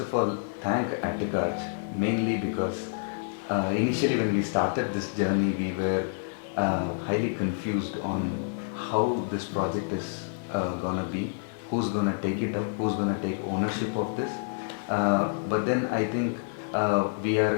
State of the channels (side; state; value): right; silent; 59 dB below the other